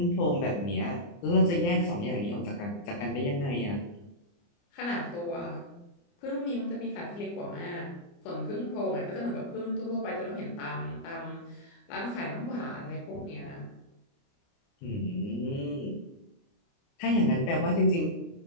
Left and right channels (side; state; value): right; late; 29 ms